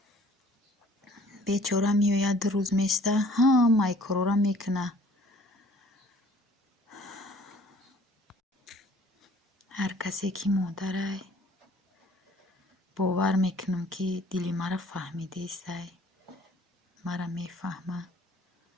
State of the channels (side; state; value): both; normal; correlation 0.54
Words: бечора меоя 2 рӯз места, ҳамаи корора мекуна. ҳар касе ки модарай бовар мекунам ки дили мара фаҳмидаистай, мара мефаҳма.